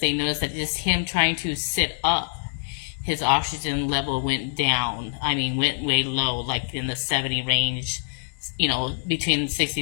they noticed that just him trying to sit up, his oxygen level went down. I mean, went way low, like in the 70 range, between 60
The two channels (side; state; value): right; silent; digital silence